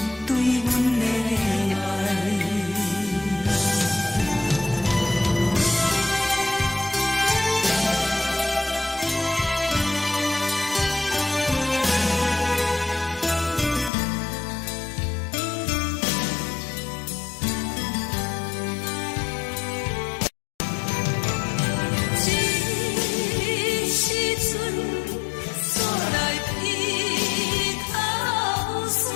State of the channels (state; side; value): drops out; right; at 13.9 s